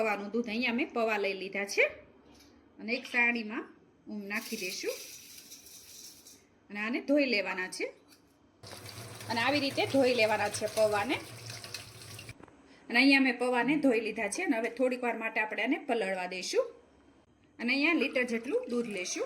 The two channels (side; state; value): both; identical; correlation 1.00